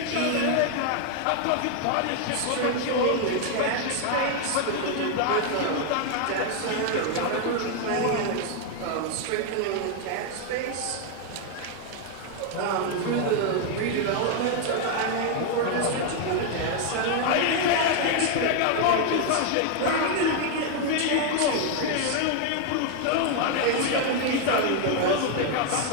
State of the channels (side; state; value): both; different; correlation 0.00